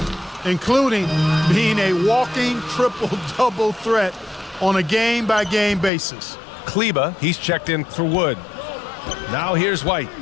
including being a walking triple-double threat on a game-by-game basis. Kleba, he's checked in for Wood. Now here's White.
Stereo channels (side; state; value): right; drops out; at 5.9 s